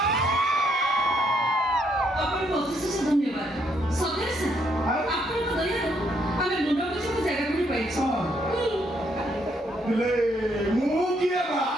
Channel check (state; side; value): normal; both; correlation 0.72